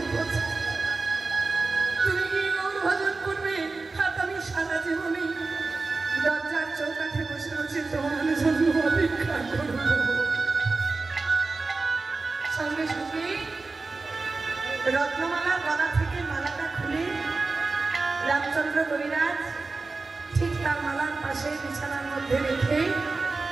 পথে। তুমি কি গৌর ভজন করবে, আর আমি সারা জীবনে দরজার চৌকাঠে বসে বসে তোমার জন্য অপেক্ষা করব। সঙ্গে সঙ্গে রত্নমালার গলা থেকে মালাটা খুলে রামচন্দ্র কবিরাজ ঠিক তার মালার পাশে বিছানার মধ্যে রেখে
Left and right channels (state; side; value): quieter; left; 3.8 dB